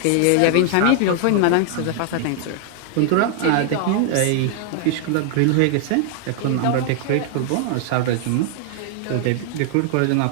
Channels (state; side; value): different; both; correlation 0.00